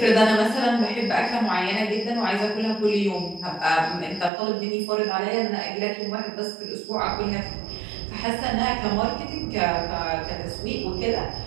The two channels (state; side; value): drops out; left; at 4.3 s